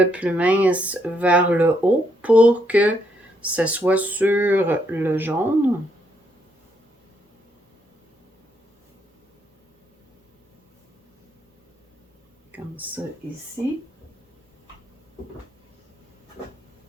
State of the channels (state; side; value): normal; both; correlation 0.75